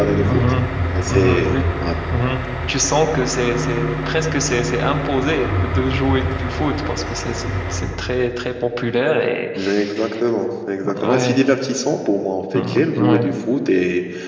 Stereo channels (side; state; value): both; identical; correlation 1.00